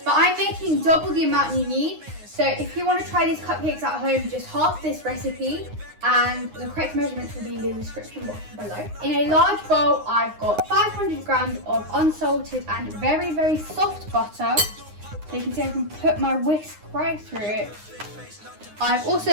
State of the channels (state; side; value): late; left; 9.7 ms